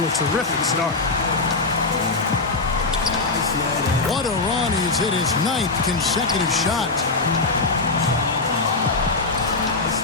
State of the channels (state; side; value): quieter; right; 3.6 dB